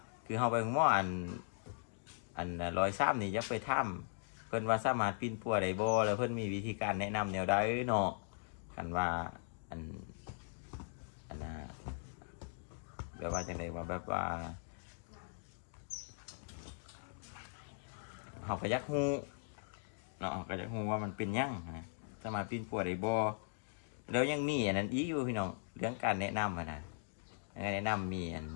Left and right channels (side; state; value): right; silent; digital silence